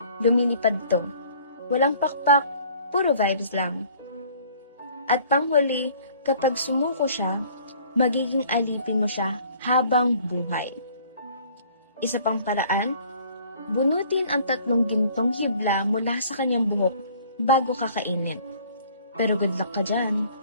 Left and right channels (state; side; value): inverted; both; correlation -0.54